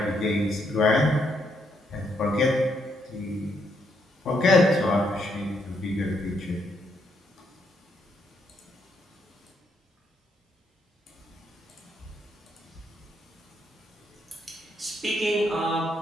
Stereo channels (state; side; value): normal; both; correlation 0.76